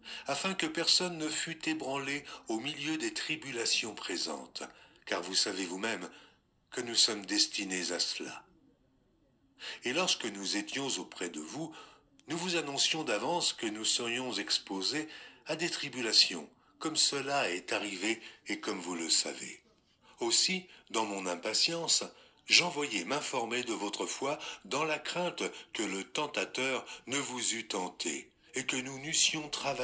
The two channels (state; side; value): identical; both; correlation 1.00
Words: afin que personne ne fût ébranlé au milieu des tribulations présentes, car vous savez vous-même que nous sommes destinés à cela. Et lorsque nous étions auprès de vous, nous vous annoncions d'avance que nous serions exposés à des tribulations, comme cela est arrivé et comme vous le savez. Aussi, dans mon impatience, j'envoyai m'informer de votre foi dans la crainte que le tentateur ne vous eût tenté et que nous n'eussions